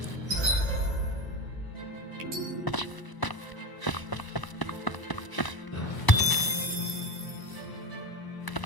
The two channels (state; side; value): late; right; 1.0 ms